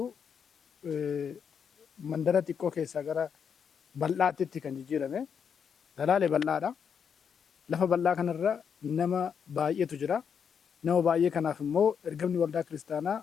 mandara xiqqoo keessaa gara bal'aatti kan jijjiirame. Salaalee bal'aadha. Lafa bal'aa kanarra nama baay'eetu jira. Nama baay'ee kanaaf immoo ergamni waldaa kiristaanaa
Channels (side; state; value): right; quieter; 7.1 dB